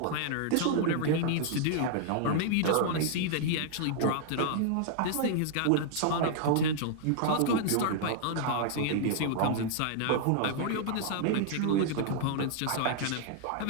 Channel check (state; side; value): different; both; correlation -0.01